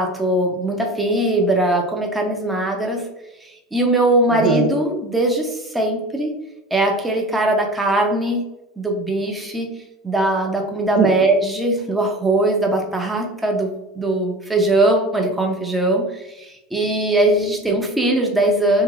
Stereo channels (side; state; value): both; normal; correlation 0.37